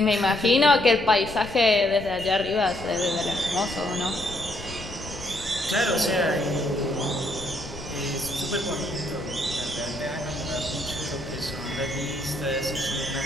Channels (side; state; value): left; noise; rumble, 14 dB below the sound